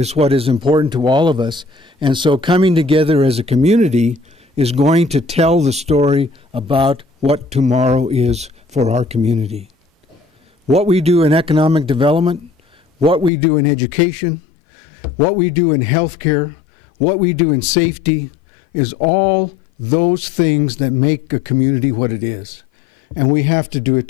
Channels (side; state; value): right; drops out; at 13.3 s